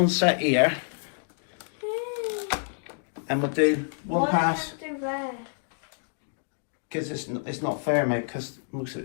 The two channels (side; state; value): right; silent; digital silence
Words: set here, and we'll do one pass, because it's not fair, mate, because most of